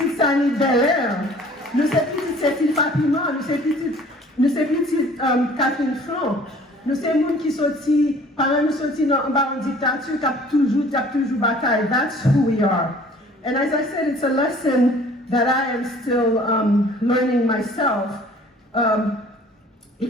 Sani Belair. Nous sommes petites Cécile Papillon. Nous sommes petites Catherine Franc. Nous sommes gens qui sorti, pendant nous sorti dans une dictature, qui a toujours bataille. That's who we are. And as I said, it's a lesson that I am still learning myself,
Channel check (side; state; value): both; normal; correlation 0.52